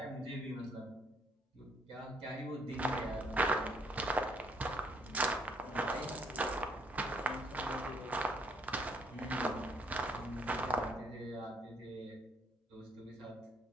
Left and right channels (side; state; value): both; normal; correlation 0.68